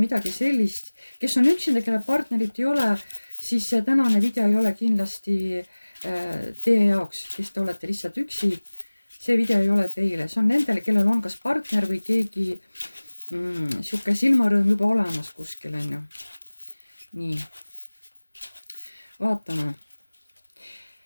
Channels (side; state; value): both; inverted; correlation -1.00